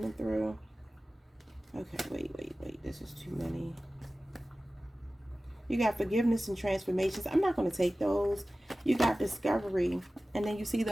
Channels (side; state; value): both; normal; correlation 0.96